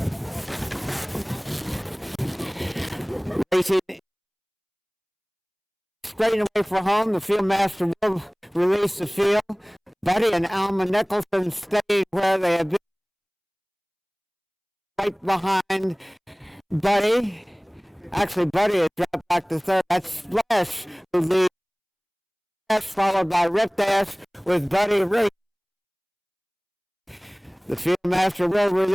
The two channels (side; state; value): both; identical; correlation 1.00